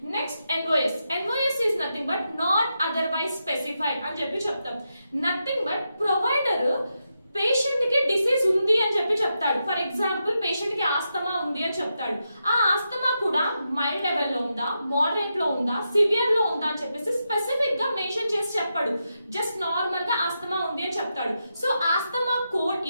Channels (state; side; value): inverted; both; correlation -0.86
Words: Next NOS is nothing but not otherwise specified అని చెప్తాం. నథింగ్ బట్ ప్రొవైడర్ పేషెంట్ కి డిసీజ్ ఉంది అని చెప్తాడు. ఫర్ ఎగ్జాంపుల్ పేషెంట్ కి ఆస్తమా ఉంది అని చెప్తాడు. ఆ ఆస్తమా కూడా మైల్డ్ లెవెల్ లో ఉందా, మోడరేట్ లో ఉందా, సివియర్ లో ఉందా అని చెప్పేసి స్పెసిఫిక్ గా మెన్షన్ చేసి చెప్పాడు. జస్ట్ నార్మల్ గా ఆస్తమా ఉంది అని చెప్తాడు. So asthma code